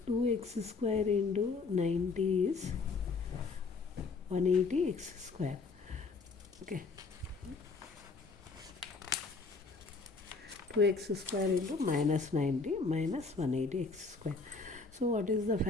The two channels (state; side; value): quieter; right; 4.3 dB